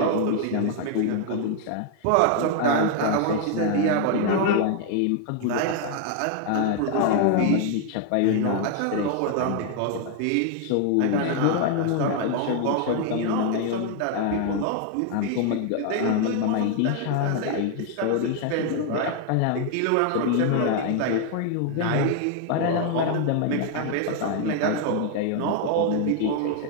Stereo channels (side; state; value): both; different; correlation 0.00